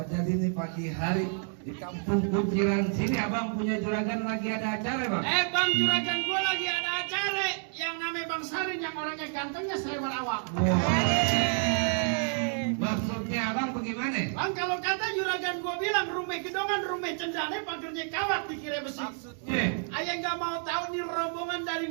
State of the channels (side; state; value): left; silent; 58 dB below the other